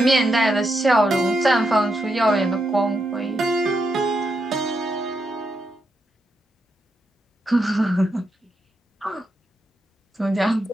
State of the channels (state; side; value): normal; both; correlation 0.83